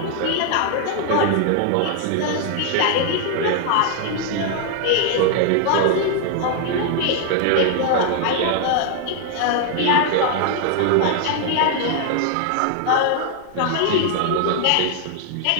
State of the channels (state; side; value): different; both; correlation 0.00